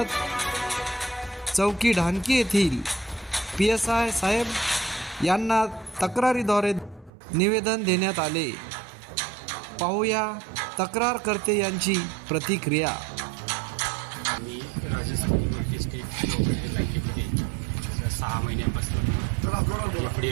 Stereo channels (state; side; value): drops out; left; at 7.1 s